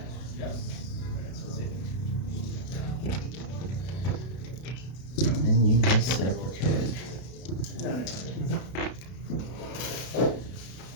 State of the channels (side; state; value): right; late; 32 ms